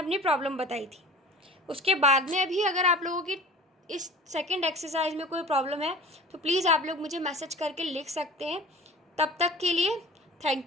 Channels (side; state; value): both; normal; correlation 0.40